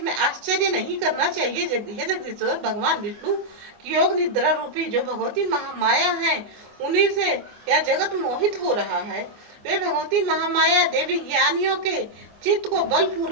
आश्चर्य नहीं करना चाहिए। जगदीश्वर भगवान विष्णु की योग निद्रा रूपी जो भगवती महामाया है, उन्हीं से यह जगत मोहित हो रहा है। वे भगवती महामाया देवी ज्ञानियों के चित्त को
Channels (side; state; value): left; late; 24 ms